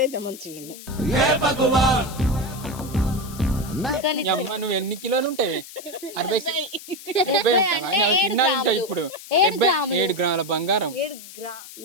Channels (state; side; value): noise; left; hiss, 16 dB below the sound